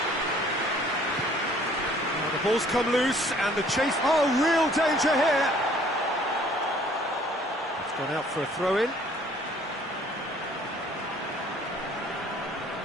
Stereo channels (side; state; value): both; normal; correlation 0.57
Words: Now the ball's come loose and the chase... Oh, real danger here! It's gone out for a throw-in.